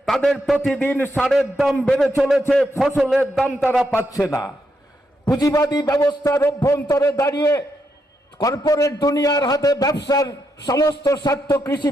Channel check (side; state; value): both; normal; correlation 0.81